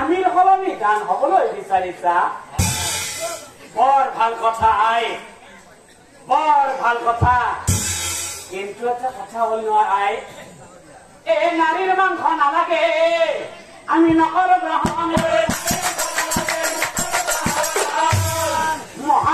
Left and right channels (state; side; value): identical; both; correlation 1.00